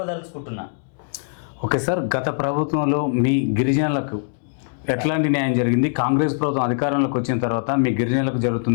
ఓకే సార్, గత ప్రభుత్వంలో మీ గిరిజనులకు ఎట్లాంటి న్యాయం జరిగింది? కాంగ్రెస్ ప్రభుత్వం అధికారంలోకి వచ్చిన తర్వాత మీ గిరిజనులకు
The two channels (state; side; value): silent; right; digital silence